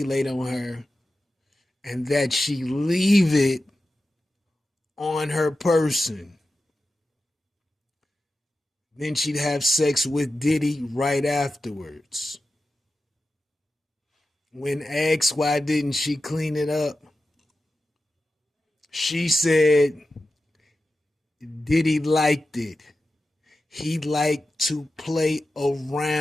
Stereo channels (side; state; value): both; normal; correlation 0.92